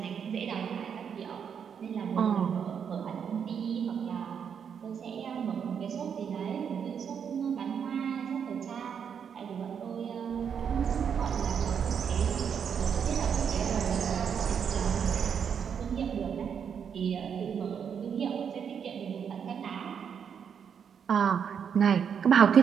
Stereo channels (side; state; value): left; quieter; 7.4 dB